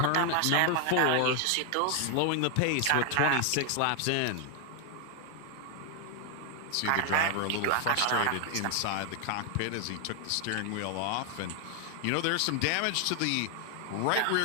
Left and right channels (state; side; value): different; both; correlation 0.00